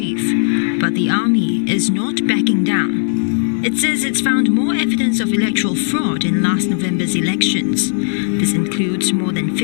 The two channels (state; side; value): silent; right; 68 dB below the other